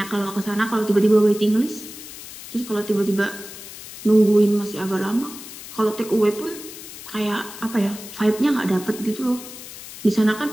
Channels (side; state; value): left; noise; hiss, 14 dB below the sound